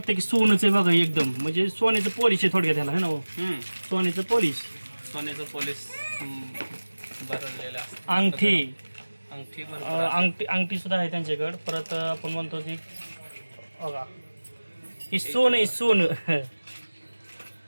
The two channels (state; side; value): inverted; both; correlation -1.00